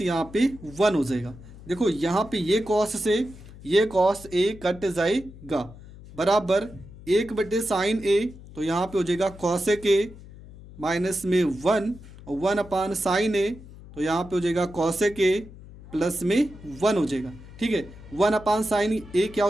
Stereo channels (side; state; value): left; noise; hum, 18 dB below the sound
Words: यहाँ पे 1 हो जाएगा। देखो यहाँ पे ये कॉस से ये कॉस ए कट जाएगा, बराबर 1 बटे साइन ए, तो यहाँ पे हो जाएगा कॉसेक ए माइनस में 1 और 1 अपान साइन ए, तो यहाँ पे हो जाएगा कॉसेक ए प्लस में 1 हो जाएगा, ठीक है। 1 अपान साइन ए क्या